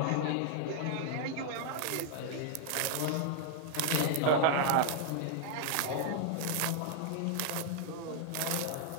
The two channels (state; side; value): different; both; correlation 0.00